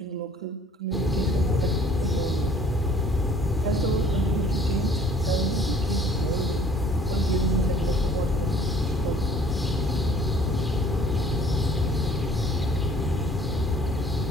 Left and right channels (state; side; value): normal; both; correlation 0.56